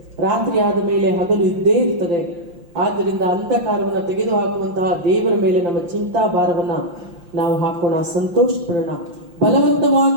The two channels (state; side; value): late; left; 5.8 ms